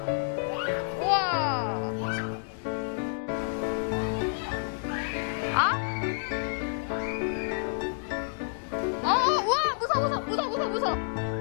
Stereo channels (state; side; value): silent; right; digital silence